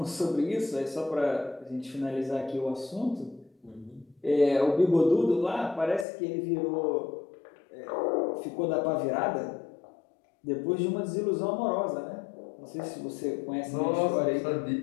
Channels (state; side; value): drops out; right; at 6.1 s